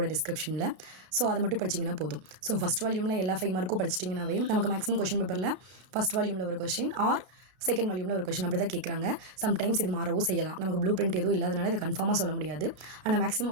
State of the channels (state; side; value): late; left; 33 ms